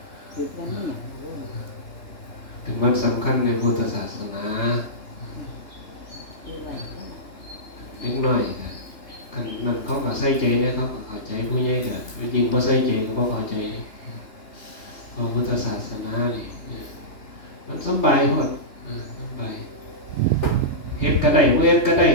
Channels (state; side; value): late; right; 3.3 ms